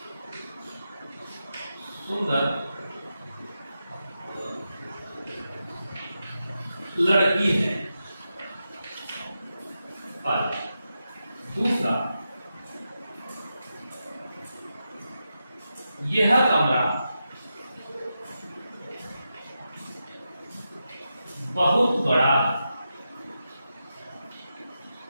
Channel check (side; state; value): both; inverted; correlation -0.88